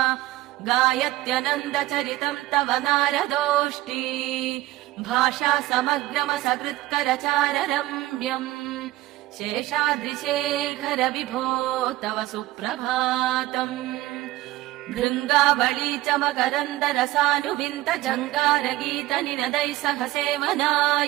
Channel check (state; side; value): quieter; left; 16.9 dB